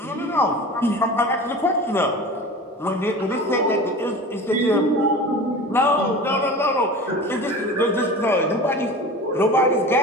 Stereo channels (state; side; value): normal; both; correlation 0.35